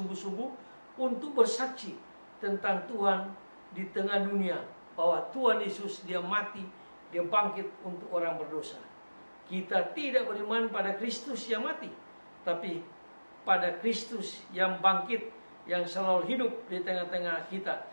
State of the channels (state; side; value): inverted; both; correlation -1.00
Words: untuk bersaksi tentang Tuhan di tengah dunia, bahwa Tuhan Yesus, dia mati, dia bangkit untuk orang berdosa. Kita tidak beriman pada Kristus yang mati, tapi pada Kristus yang bangkit, yang selalu hidup di tengah-tengah kita,